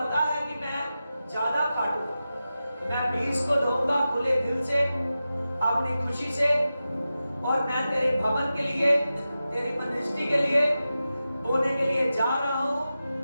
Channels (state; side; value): inverted; both; correlation -0.93